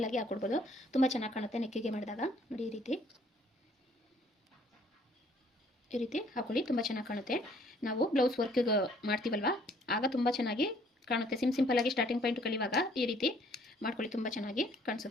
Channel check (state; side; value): normal; both; correlation 0.61